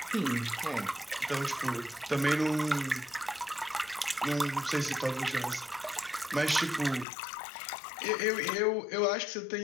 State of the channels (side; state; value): right; drops out; at 7.1 s